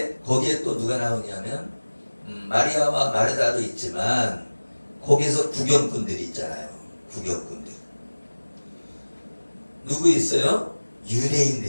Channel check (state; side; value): inverted; both; correlation -1.00